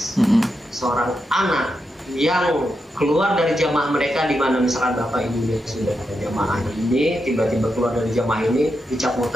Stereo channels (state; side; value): normal; both; correlation 0.85